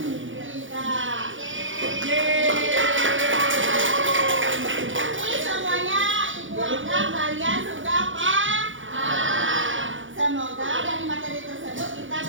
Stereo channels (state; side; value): late; left; 0.56 ms